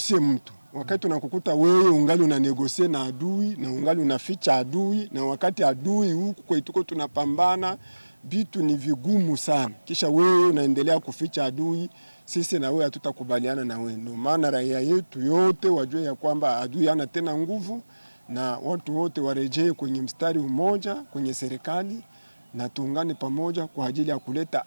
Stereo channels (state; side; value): inverted; both; correlation -1.00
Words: mtu. Wakati unakukuta wewe ungali unanegosie na adui na ungali unaficha adui, na wakati adui huku kwetuko tunapambana, vitu ni vigumu sana. Kisha wewe unaendelea kuficha adui, sisi na wewe hatutakubaliana na wewe. Ndio maana raia yetu yote wajue ya kwamba adui hana tena nguvu, na watu wote warejee kwenye mstari mmoja kwenye serikali, na tuungane pamoja kwa ajili ya